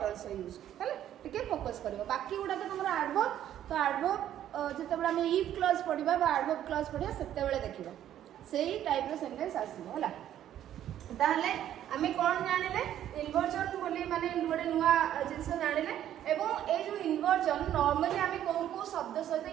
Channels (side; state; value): left; quieter; 11.3 dB